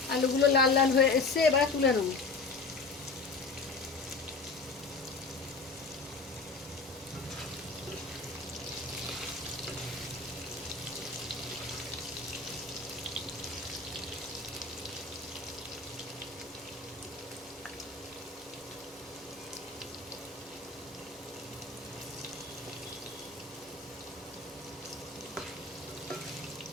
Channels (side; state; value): right; quieter; 3.9 dB